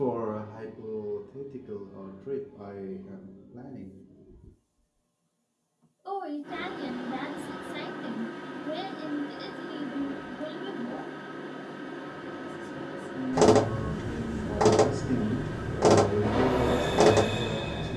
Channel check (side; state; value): both; identical; correlation 1.00